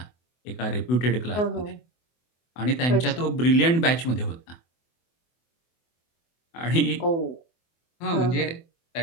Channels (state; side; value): late; right; 24 ms